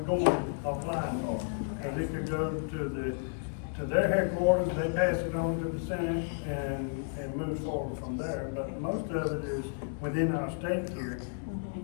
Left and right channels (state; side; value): silent; right; digital silence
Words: going applying for. Cause it could go to their headquarters, they pass it on to the Senate and move forward from there. But most of it is within our state here,